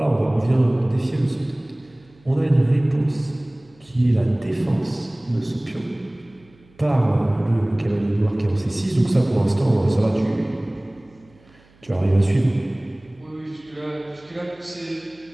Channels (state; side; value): noise; right; hum, 30 dB below the sound